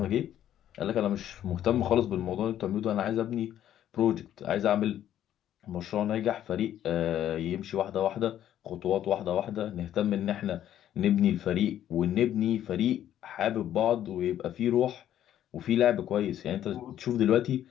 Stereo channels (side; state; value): right; quieter; 11.3 dB